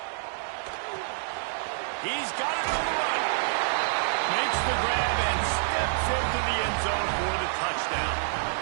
He's got it on the run. Makes the grab and steps into the end zone for the touchdown.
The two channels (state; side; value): silent; left; digital silence